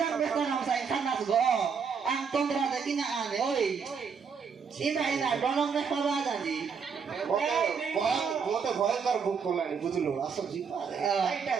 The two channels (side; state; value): left; quieter; 6.1 dB